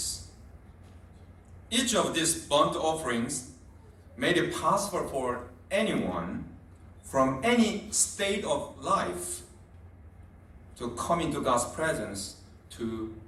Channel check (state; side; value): identical; both; correlation 1.00